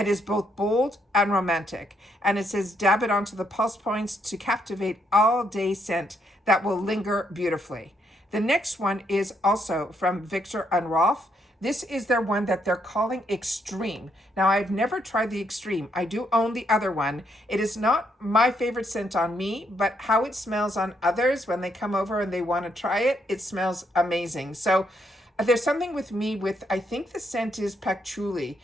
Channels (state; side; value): normal; both; correlation 0.75